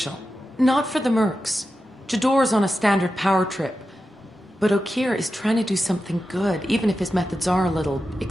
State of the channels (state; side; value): normal; both; correlation 0.91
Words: Not for the mercs. Jador's on a standard power trip. But Okir is trying to do something good, even if his methods are a little